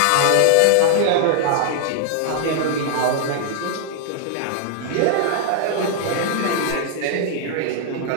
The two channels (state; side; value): different; both; correlation 0.00